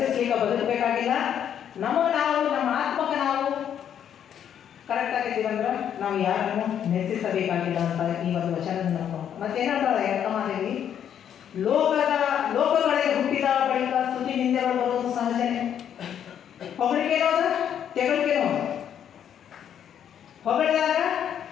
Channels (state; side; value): quieter; right; 9.2 dB